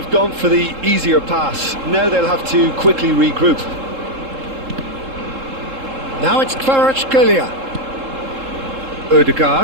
gone for the easier pass. Now they'll have to quickly regroup. Now it's Kvaratskhelia.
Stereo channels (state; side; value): late; left; 3.7 ms